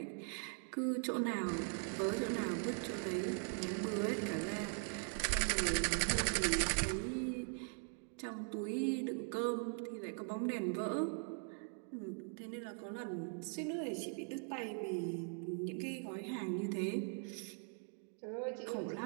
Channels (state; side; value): silent; left; 50 dB below the other